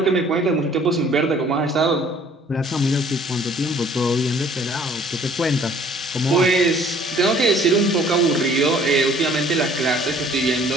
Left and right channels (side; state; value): both; normal; correlation 0.56